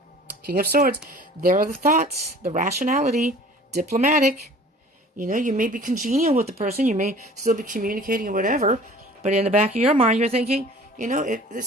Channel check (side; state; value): both; normal; correlation 0.47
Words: King of Swords. There are the thoughts, the rationality, diplomatic. You know, you may be congenial with the person. You may still be communicating or whatever. But in the back of your mind, you're thinking, you know,